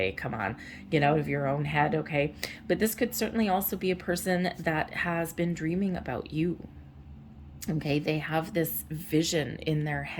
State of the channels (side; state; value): both; identical; correlation 1.00